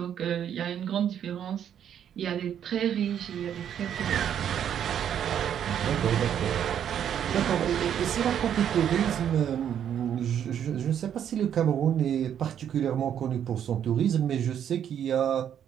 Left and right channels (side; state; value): left; quieter; 9.3 dB